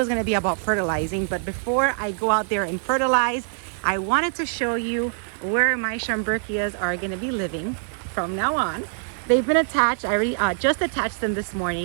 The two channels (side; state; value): left; silent; digital silence